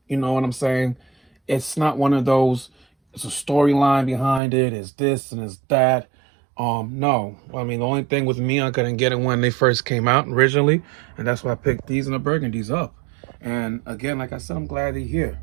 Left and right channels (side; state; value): left; drops out; at 4.4 s